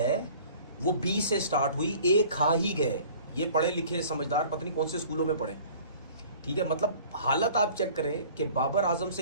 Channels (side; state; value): both; inverted; correlation -0.49